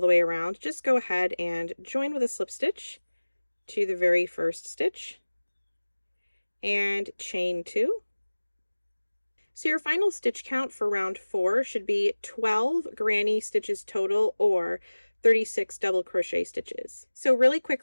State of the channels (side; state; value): both; inverted; correlation -1.00